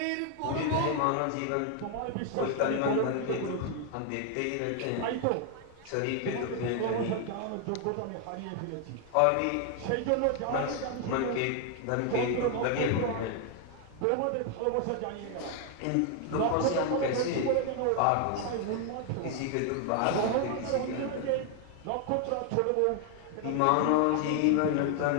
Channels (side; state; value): both; different; correlation 0.00